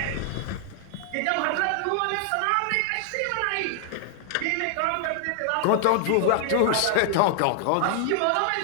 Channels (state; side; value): different; both; correlation 0.00